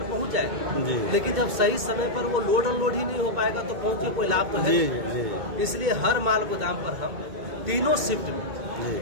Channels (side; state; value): left; late; 2.1 ms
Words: पहुंच जाएगी, लेकिन जब सही समय पर वो लोड अनलोड ही नहीं हो पाएगा तो पहुंच के कोई लाभ तो है। इसलिए हर माल गोदाम पर हम तीनों शिफ्ट में